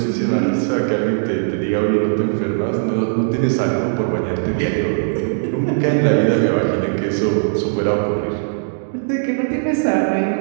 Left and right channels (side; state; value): left; silent; digital silence